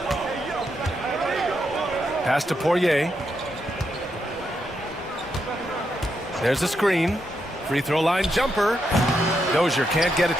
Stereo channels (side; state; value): both; normal; correlation 0.81